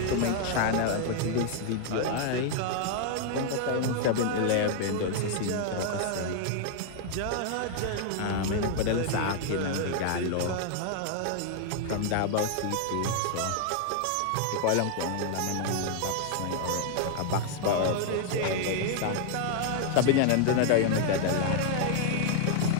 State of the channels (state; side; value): different; both; correlation 0.00